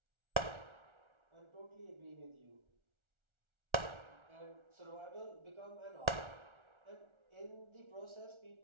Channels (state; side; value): late; left; 1.4 ms